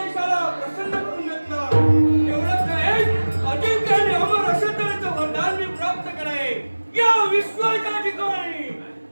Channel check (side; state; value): both; inverted; correlation -1.00